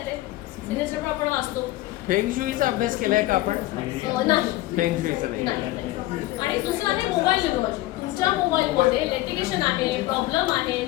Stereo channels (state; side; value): quieter; right; 17.4 dB